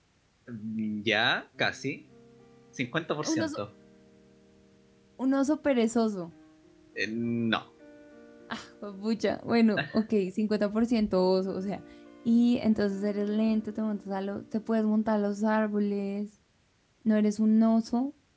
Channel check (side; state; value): both; identical; correlation 1.00